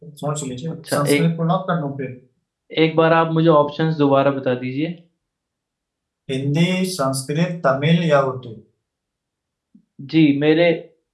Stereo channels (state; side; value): identical; both; correlation 1.00